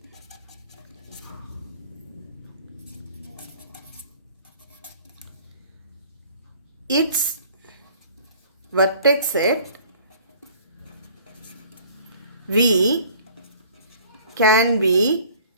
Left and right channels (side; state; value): both; inverted; correlation -0.52